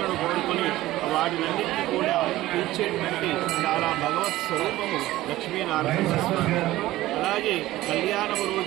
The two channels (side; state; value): left; quieter; 16.4 dB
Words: కోరుకొని వాటినన్నింటినీ కూడా తీర్చేటువంటి చాలా భగవత్ స్వరూపము లక్ష్మీనారాయణ స్వామి. అలాగే కళ్యాణము